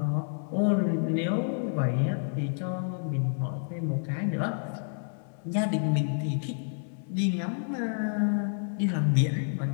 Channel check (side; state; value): right; silent; 58 dB below the other